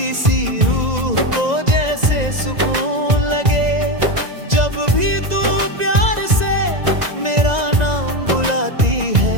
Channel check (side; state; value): left; late; 1.9 ms